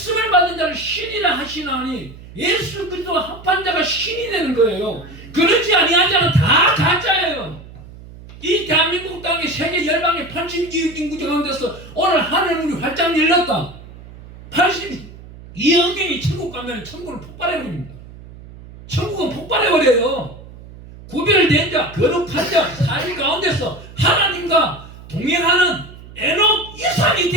받은 자를 신이라 하시나니 예수 그리스도와 합한 자가 신이 되는 거예요. 그렇지 아니한 자는 다 가짜예요. 이 대한민국 땅에 세계 열방의 82억 인구 가운데서 오늘 하늘문이 활짝 열렸다. 82억 명이 천국 가면 천국을 폭발해버립니다. 천국은 폭발해버려요. 구별된 자, 거룩한 자, 사실 가운데서 하나님과 동행하는 에녹 이상이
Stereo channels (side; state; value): right; noise; hum, 18 dB below the sound